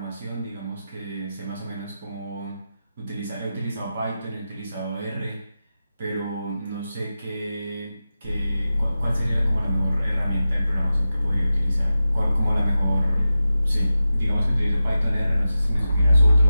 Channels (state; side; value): inverted; both; correlation -0.92